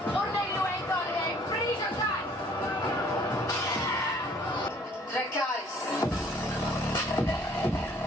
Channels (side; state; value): both; normal; correlation 0.58